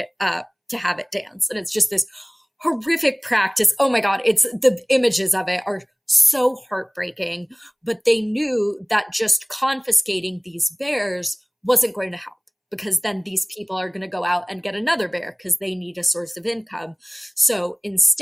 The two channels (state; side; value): identical; both; correlation 1.00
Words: up to have it dance. And it's just this horrific practice. Oh my God, it's the images of it are so heartbreaking, but they knew that just confiscating these bears wasn't going to help, because then these people are going to go out and get another bear because they need a source of income. So